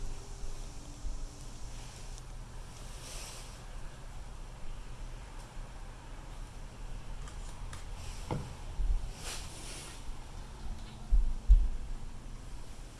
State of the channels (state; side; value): identical; both; correlation 1.00